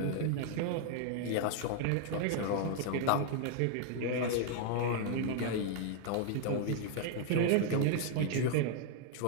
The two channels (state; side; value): different; both; correlation 0.00